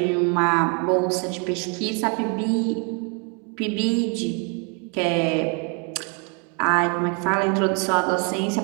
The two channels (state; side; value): quieter; left; 35.9 dB